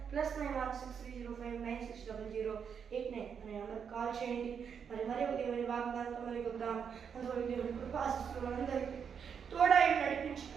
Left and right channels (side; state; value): left; quieter; 7.1 dB